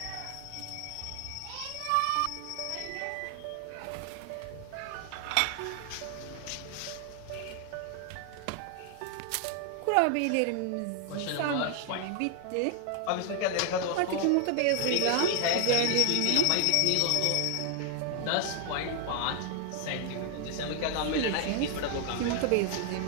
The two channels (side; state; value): both; different; correlation 0.00